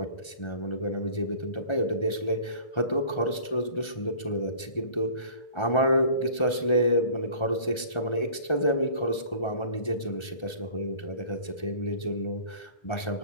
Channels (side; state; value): right; late; 1.4 ms